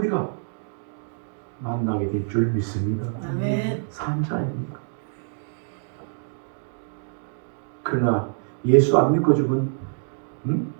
만나게 될 줄 믿습니다. 아멘. 산자입니다. 그러나 예수 안 믿고 죽은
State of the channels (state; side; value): silent; left; digital silence